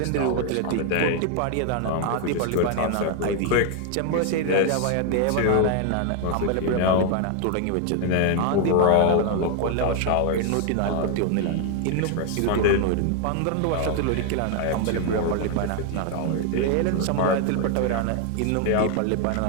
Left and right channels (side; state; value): both; different; correlation 0.00